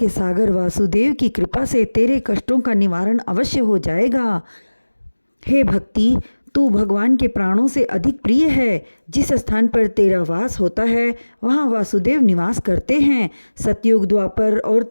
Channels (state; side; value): inverted; both; correlation -1.00